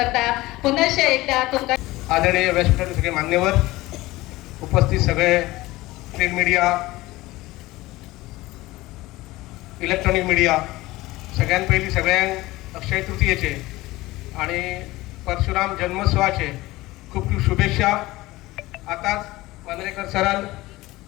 पुनश्च एकदा तुमकां आदरणीय व्यासपीठाचे सगळे मान्यवर, उपस्थित सगळे प्रिंट मीडिया, इलेक्ट्रॉनिक मीडिया, सगळ्यां पयलीं सगळ्यांक अक्षय तृतीयेचे आणि परशुराम जन्मोत्सवाचे खूप खूप शुभेच्छा. आताच मांद्रेकर सरान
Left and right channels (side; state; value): right; quieter; 18.9 dB